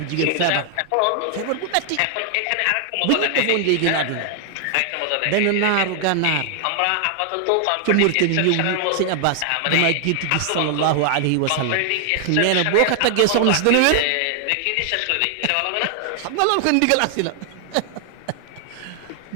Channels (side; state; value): both; different; correlation 0.00